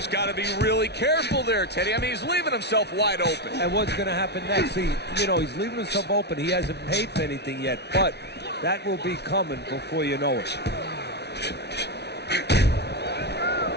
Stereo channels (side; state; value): right; late; 0.49 ms